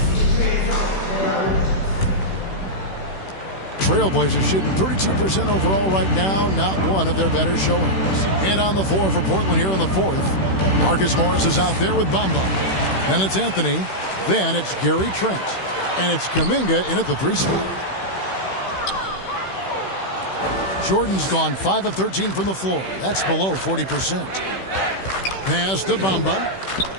Trailblazers shooting 32% overall right now, not one of their better showings. And on the floor for Portland here in the fourth, Marcus Morris is out there with Bamba. Then it's Anthony. Then it's Gary Trent. And it's Kuminga in at the 3 spot. Jordan's gone 5 of 13 from the floor. That's below 40%. Pass to Bamba.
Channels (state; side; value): late; right; 16 ms